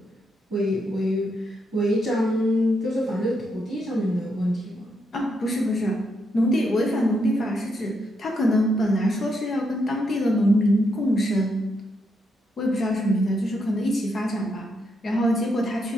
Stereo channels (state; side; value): normal; both; correlation 0.79